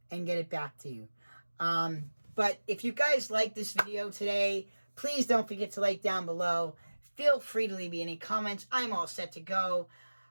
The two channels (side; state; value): both; inverted; correlation -1.00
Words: and get it back to you. But if you guys like this video today, please don't forget to like down below. Feel free to leave me any comments. I'm all set to go.